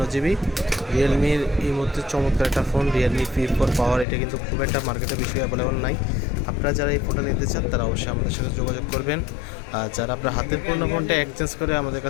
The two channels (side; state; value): right; drops out; at 4.0 s